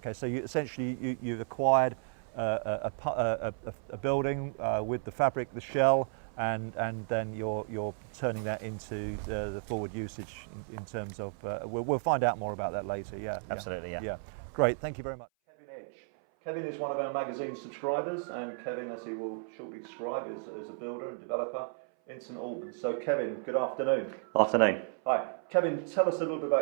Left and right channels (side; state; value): left; silent; 56 dB below the other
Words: so you've acquired a building with the fabric, the shell, and then you're turning that into the forward usage in terms of. We'll find out more about that later. Yeah. Absolutely. Yeah. Great. Thank you very much, Kevin Edge. Kevin is one of our magazine subscribers, and Kevin, as he will shortly describe, is a builder and developer in St Albans. So Kevin, good afternoon. Afternoon. Hi. Kevin, tell us a little bit